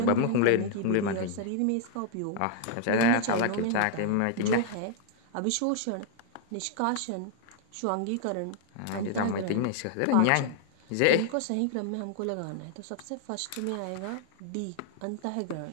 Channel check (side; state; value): both; different; correlation 0.00